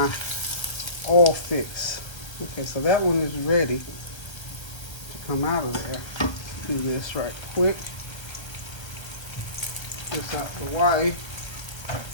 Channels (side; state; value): right; late; 1.3 ms